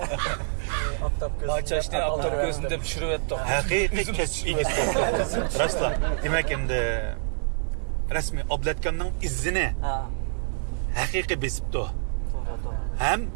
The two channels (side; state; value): left; silent; digital silence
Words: Bahçeşni aptop gözünde pişirip ettik. Haqiqiy kasbiy rastla. Demak endi rasmiy oblatkamning izini haqiqiy besibdi. Ham